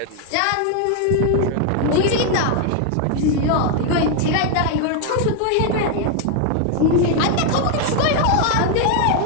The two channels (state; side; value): different; both; correlation 0.01